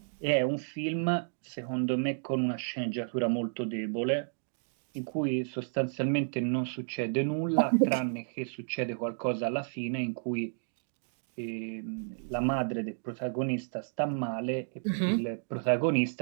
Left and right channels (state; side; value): silent; left; digital silence